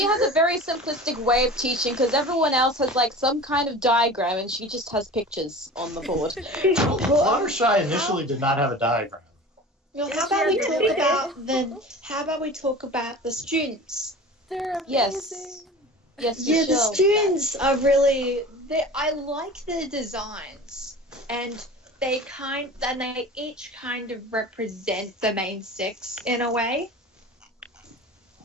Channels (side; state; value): both; normal; correlation 0.37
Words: has a very simplistic way of teaching because everyone else has like some kind of diagram and she just has pictures on the board. Fluttershy initially did not have a diagram. Well, how about we talk about the students? They're amazing. Yes, yeah, the students are really. I like their designs, and they each kind of represent the main six in a way.